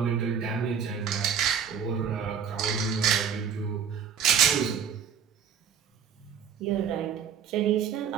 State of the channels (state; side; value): quieter; left; 7.7 dB